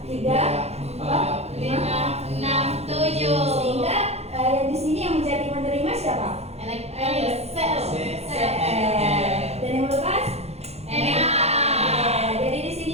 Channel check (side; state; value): left; late; 0.31 ms